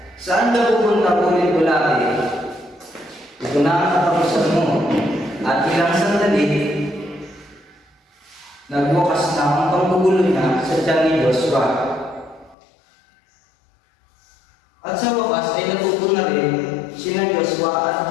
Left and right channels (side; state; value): right; drops out; at 12.6 s